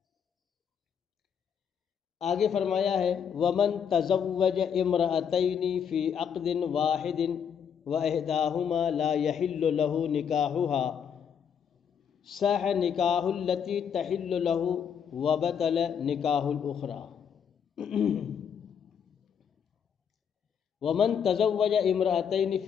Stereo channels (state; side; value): quieter; right; 7.6 dB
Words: آگے فرمایا ہے وَمَن تَزَوَّجَ امْرَأَتَيْنِ فِي عَقْدٍ وَاحِدٍ وَإِحْدَاهُمَا لَا يَحِلُّ لَهُ نِكَاحُهَا صَحَّ نِكَاحُ الَّتِي تَحِلُّ لَهُ وَبَطَلَ نِكَاحُ الْأُخْرَى۔ وَمَن تَزَوَّجَ امْرَأَتَيْنِ